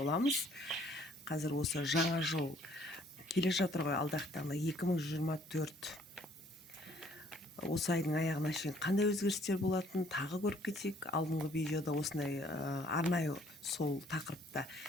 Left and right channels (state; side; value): normal; both; correlation 0.61